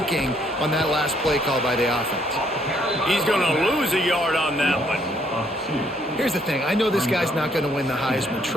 on that last play call by the offense. He's going to lose a yard on that one. Here's the thing. I know this guy's not going to win the Heisman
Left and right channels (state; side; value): normal; both; correlation 0.68